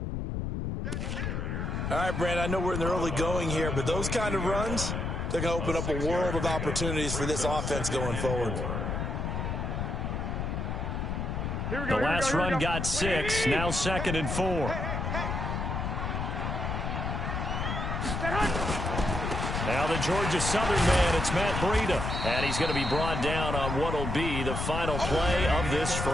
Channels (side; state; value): left; noise; rumble, 2 dB below the sound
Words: All right, Brand, I know we're in the early going here, but those kind of runs, they're going to open up a world of opportunities for this offense going forward. The last run got 6, now 2nd and 4. Now the Georgia Southern man, it's Matt Breida. And he's going to be brought down on what will be the final play of this